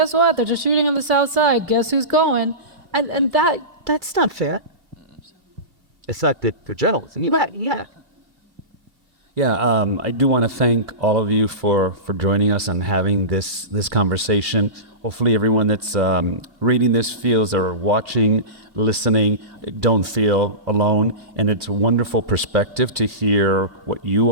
what? They're just shooting on the South Side. Guess who's going? And that's not fair. It's not the journalism. Yeah. Yeah, I do want to thank all of you for joining us and having this conversation. Hopefully everyone that's reading this feels, or watching, listening, don't feel alone. And it's a wonderful perspective to hear what you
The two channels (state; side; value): late; left; 2.5 ms